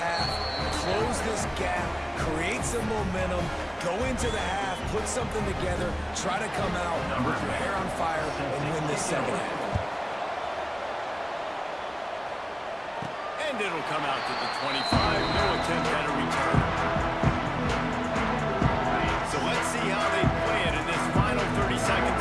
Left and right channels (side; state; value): both; identical; correlation 1.00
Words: close this gap, create some momentum, go into the half, put something together, try to come out with your hair on fire and win this second half. And it'll come out to the 25. No attempt at a return. So let's see how they play it in this final 30 seconds